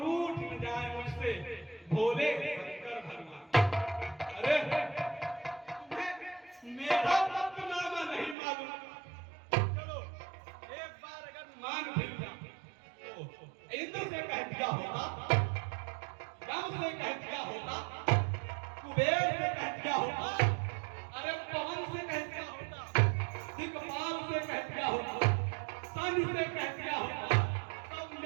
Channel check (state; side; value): drops out; left; at 8.3 s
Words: न जाए मुझसे भोले शंकर भगवान। अरे तुम्हें मेरा पत्रनामा नहीं मालूम? चलो एक बार अगर मान भी इंद्र से कह दिया होता, राम से कह दिया होता, कुबेर से कह दिया होता, अरे पवन से कह दिया होता, दिक्पाल से कह दिया होता, सन से कह दिया होता, सब